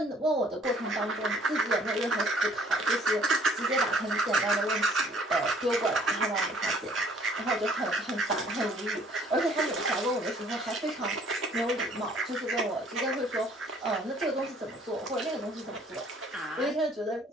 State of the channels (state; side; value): normal; both; correlation 0.58